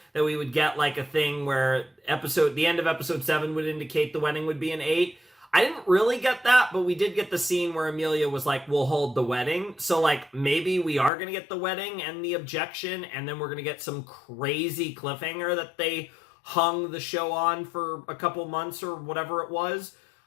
that we would get like a thing where the end of episode 7 would indicate the wedding would be in 8. I didn't really get that, but we did get the scene where Amelia was like, we'll hold the wedding. So, like, maybe we are going to get the wedding and the objection, and then we're going to get some crazy cliffhanger that they hung the show on for a couple months or whatever it was.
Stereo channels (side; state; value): right; drops out; at 11.1 s